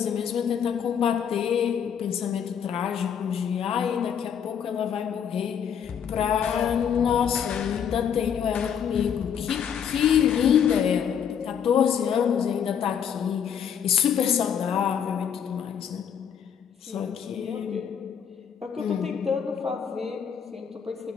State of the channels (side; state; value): right; quieter; 8.0 dB